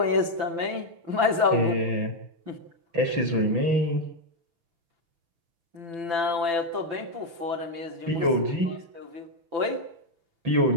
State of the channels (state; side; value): late; left; 5.9 ms